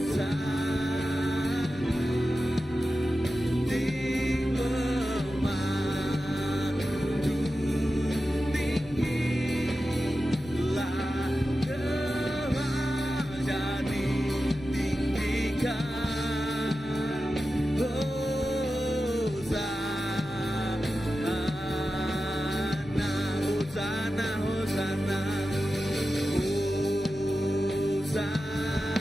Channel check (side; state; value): both; normal; correlation 0.92